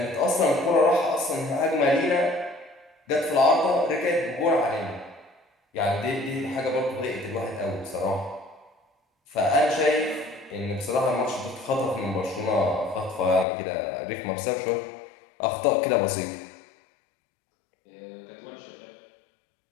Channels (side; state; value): right; drops out; at 13.5 s